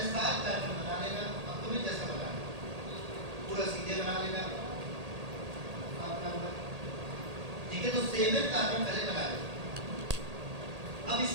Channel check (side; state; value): left; late; 1.8 ms